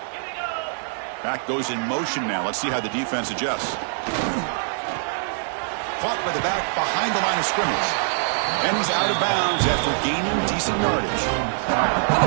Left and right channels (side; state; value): left; silent; 57 dB below the other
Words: Back goes in motion now. Let's see how the defense adjusts. Caught by the back behind the line of scrimmage. And he's out of bounds after gaining decent yardage. Well,